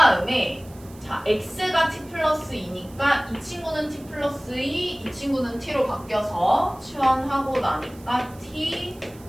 자, x가 t 플러스 2니까 이 친구는 t 플러스 2, 이 친구는 t로 바뀌어서 치환하고 나니까 t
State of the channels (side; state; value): right; noise; hiss, 24 dB below the sound